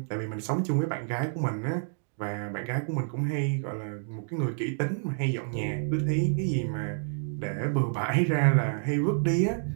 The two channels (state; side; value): silent; left; digital silence